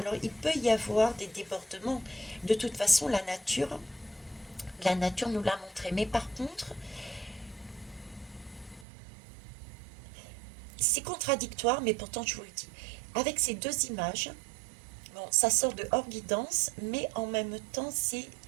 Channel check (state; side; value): drops out; left; at 8.8 s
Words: il peut y avoir des débordements. De toute façon, la nature nous l'a montré. Mais par contre, c'est contradictoire, mais pourtant je vous le dis. Avec ces deux images, bon, ça sort de hors guidance, mais en même temps,